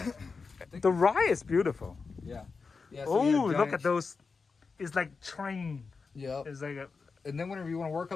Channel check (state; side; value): quieter; right; 4.7 dB